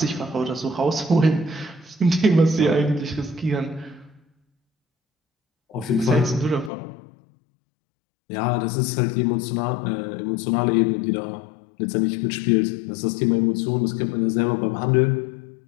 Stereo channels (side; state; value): right; drops out; at 6.7 s